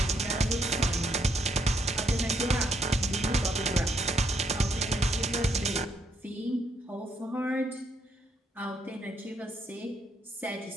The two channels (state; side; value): normal; both; correlation 0.74